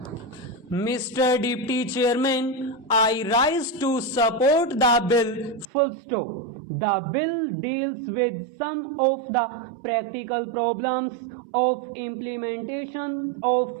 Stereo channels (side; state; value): left; drops out; at 5.7 s